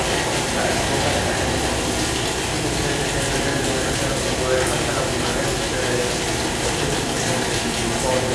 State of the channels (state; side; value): identical; both; correlation 1.00